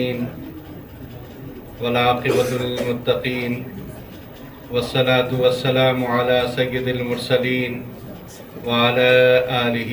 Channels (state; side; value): identical; both; correlation 1.00